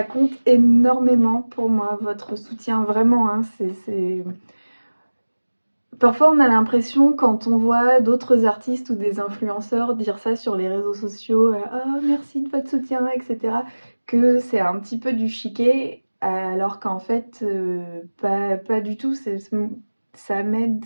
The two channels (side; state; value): both; inverted; correlation -1.00